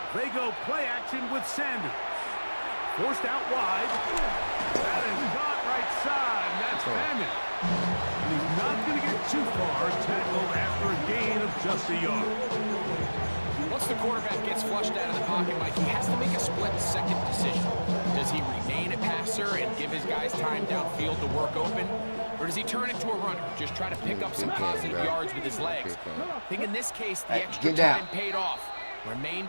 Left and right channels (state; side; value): inverted; both; correlation -1.00